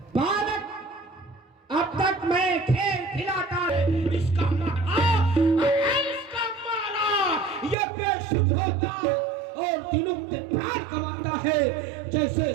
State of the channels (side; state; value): left; drops out; at 7.8 s